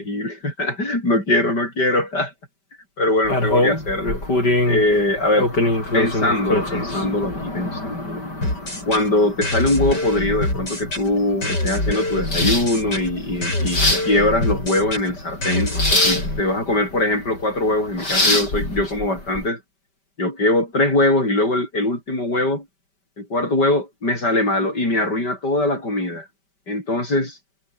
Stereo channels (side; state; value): right; late; 5.1 ms